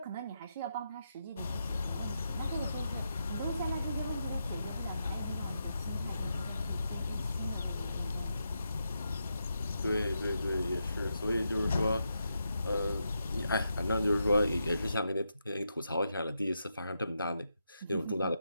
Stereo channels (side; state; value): both; inverted; correlation -0.84